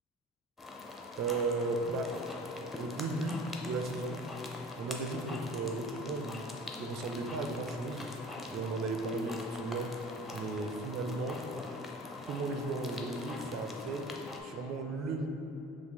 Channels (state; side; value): normal; both; correlation 0.42